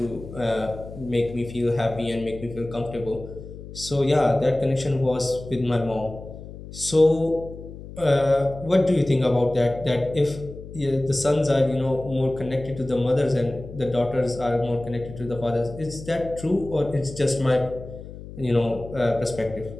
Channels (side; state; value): left; noise; hum, 13 dB below the sound